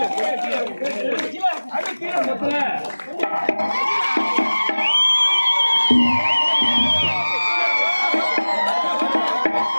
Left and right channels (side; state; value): both; inverted; correlation -1.00